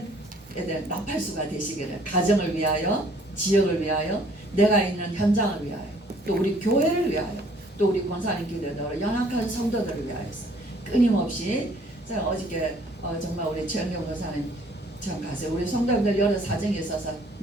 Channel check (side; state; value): both; normal; correlation 0.59